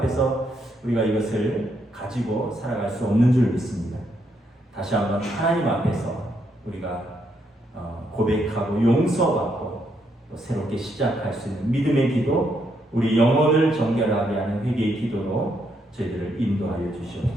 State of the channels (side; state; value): both; normal; correlation 0.76